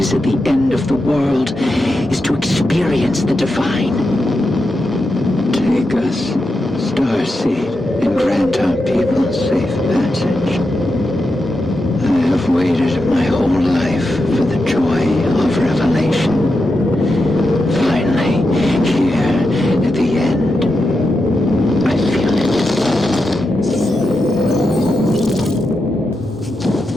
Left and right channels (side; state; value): both; normal; correlation 0.88